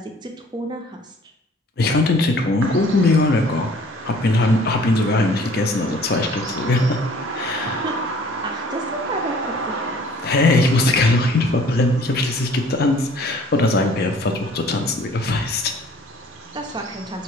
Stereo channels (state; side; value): normal; both; correlation 0.53